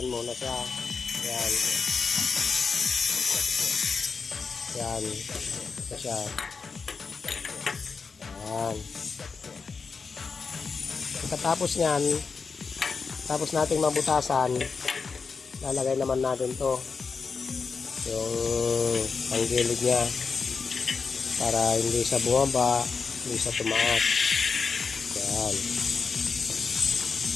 muna siya. Yan. Yan. Ito siya. Yan. Pagkatapos nyan, tapos nating mabutasan, lalagay naman natin to yung panggilid nya para hindi siya bumaba, hindi siya tumaas. Yan.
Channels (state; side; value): quieter; right; 5.0 dB